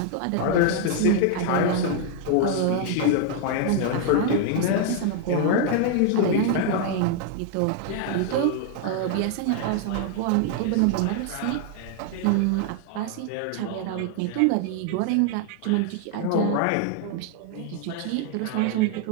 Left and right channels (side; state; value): both; different; correlation 0.00